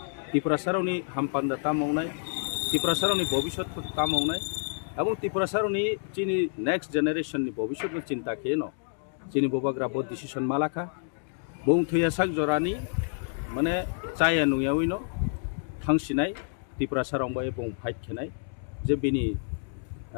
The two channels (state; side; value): silent; right; 59 dB below the other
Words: ত্রিপুরা সারনি হামপান্দা তা মাवनाय ত্রিপুরা সারনি ভবিষ্যৎ তা মাवनाय এবং ত্রিপুরা সারনি চিনি নেক্সট জেনারেশননি ভবিষ্যৎ চিন্তা কেন চিনি বুবাগ্রা বড় ডিসিশন মালাখা বং থুয়া সাক জরানি মানে চায়া নুয়াউইনো ফাংसिनाय ত্রিপুরা সারং বয়ে বং ফাইট খেনাय যে বিনি